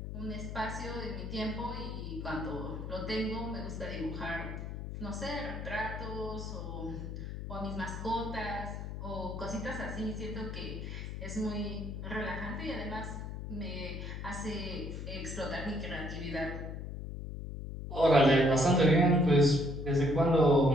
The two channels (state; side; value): noise; left; hum, 7 dB below the sound